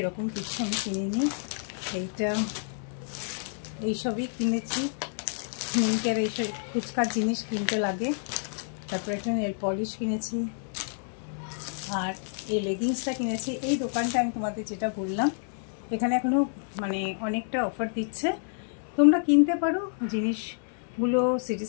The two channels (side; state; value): right; silent; digital silence